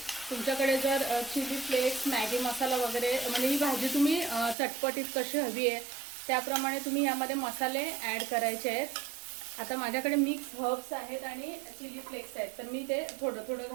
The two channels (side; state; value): left; drops out; at 4.5 s